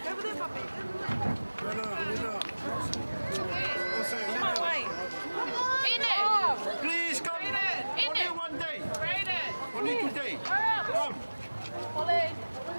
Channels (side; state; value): both; inverted; correlation -1.00